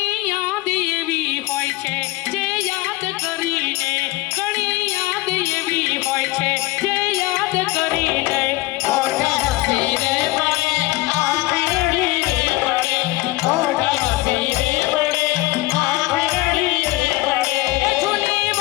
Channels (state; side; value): quieter; right; 20.0 dB